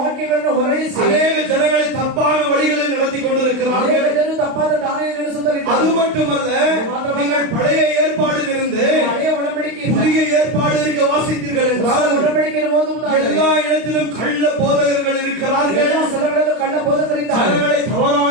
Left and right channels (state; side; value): late; left; 32 ms